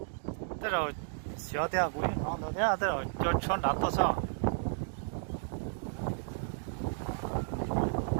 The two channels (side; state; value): left; silent; digital silence